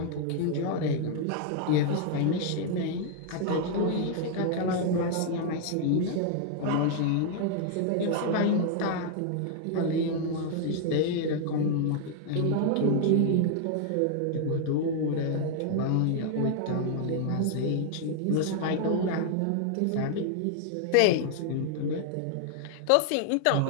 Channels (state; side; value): different; both; correlation 0.00